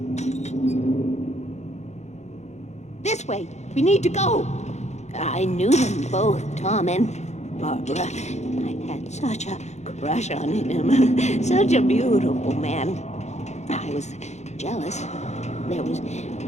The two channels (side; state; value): right; late; 0.33 ms